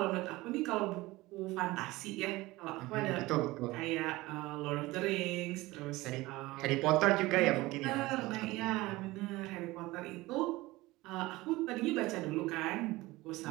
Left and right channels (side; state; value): left; quieter; 19.8 dB